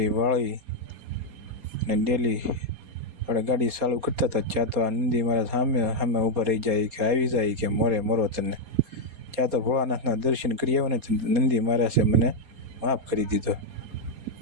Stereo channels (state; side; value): late; left; 4.2 ms